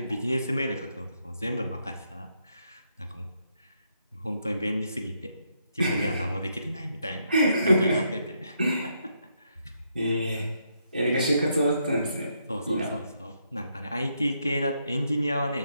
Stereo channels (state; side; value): inverted; both; correlation -0.77